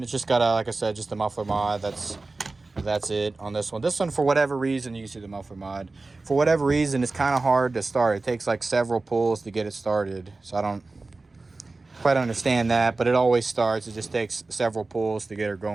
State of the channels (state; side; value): quieter; left; 3.5 dB